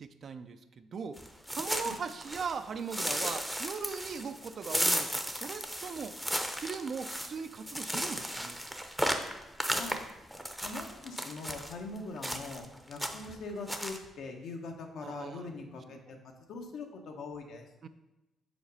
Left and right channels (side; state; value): both; normal; correlation 0.87